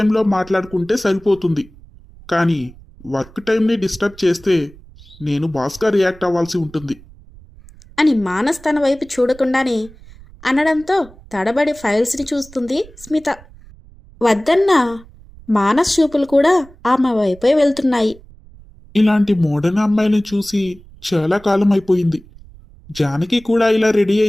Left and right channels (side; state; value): right; noise; rumble, 22 dB below the sound